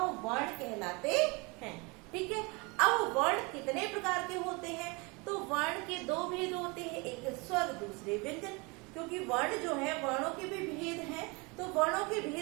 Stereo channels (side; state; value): left; quieter; 28.1 dB